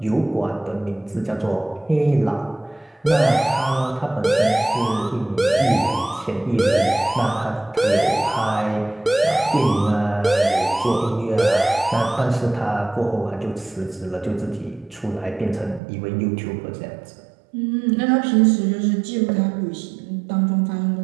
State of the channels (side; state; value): left; drops out; at 15.8 s